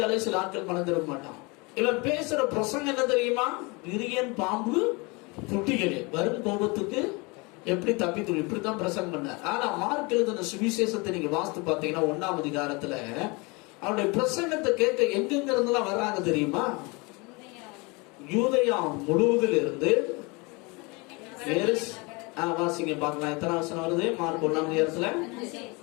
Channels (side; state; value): right; quieter; 27.6 dB